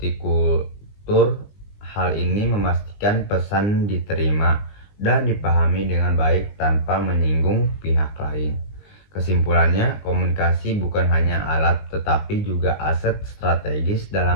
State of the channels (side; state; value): right; late; 19 ms